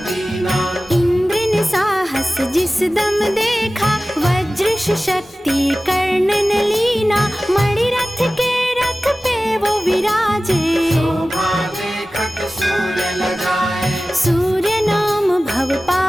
दीना। इंद्र ने साहस जिस दम देखा, वज्र शक्ति कर्ण ने लीना। मणिरथ के रथ पे वो विराजे, शोभा देखत सूर्य लगाए। सूर्य नाम भव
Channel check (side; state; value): both; normal; correlation 0.97